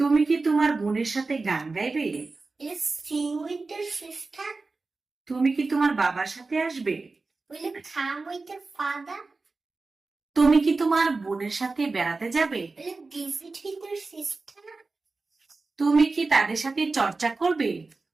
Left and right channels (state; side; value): quieter; left; 3.7 dB